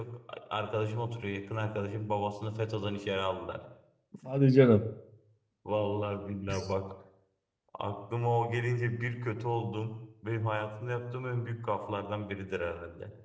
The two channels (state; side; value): identical; both; correlation 1.00